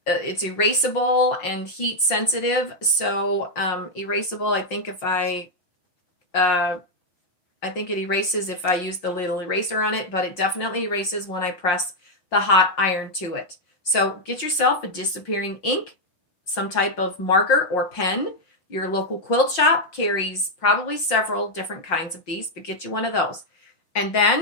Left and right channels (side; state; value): right; late; 5.6 ms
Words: It's erasable and heat sensitive. So erasable, I think it erases if I use the little eraser on it, but it definitely erases when I press the hot iron to it. So get yourself a disappearing ink, some type of marker or pen. Your local quilt shop carries probably several different kinds of these, but get you one of those. And then